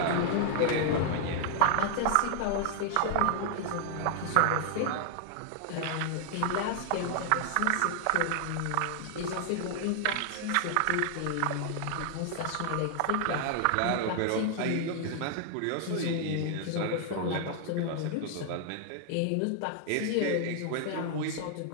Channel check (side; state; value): both; different; correlation 0.00